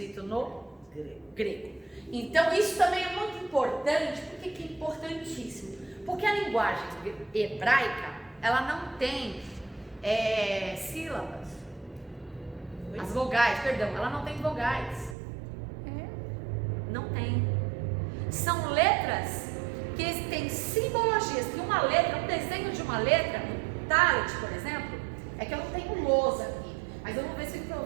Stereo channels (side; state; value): left; drops out; at 15.2 s